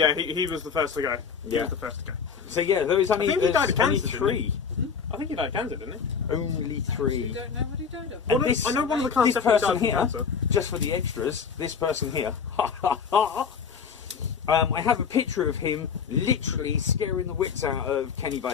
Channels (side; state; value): right; quieter; 6.3 dB